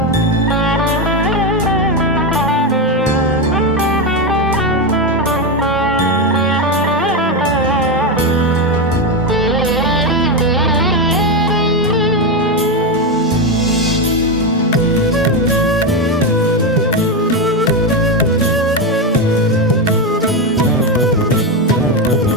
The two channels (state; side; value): normal; both; correlation 0.11